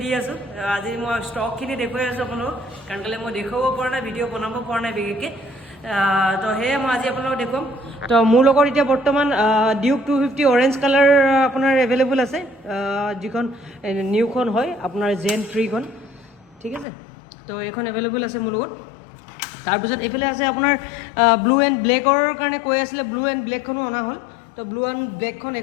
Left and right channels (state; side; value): drops out; right; at 16.9 s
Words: आसो। आज मैं स्टकखिनि देखुवाई आसो अपन कारण कले मैं देखाब पर ना भिडिओ बनाब पर ना बिखेषके। तो हे मैं आज अपन देखुवाम। तो मोर लगत इतना बर्तमान ड्यूक 250 ऑरेंज कलर अपनार एवेलेबल आछे जिखन निउखन हय अपनार जेन 3 खन ठीक है। तो एखन एवेलेबल आछे मोर लगत। तार पिছত एफाले आछे अपनार ब्लू एंड ब्लैकर कारणे কৈ आছিলে ब्लू एंड ब्लैकखनो अना हल। तो ब्लू एंड ब्लैकखन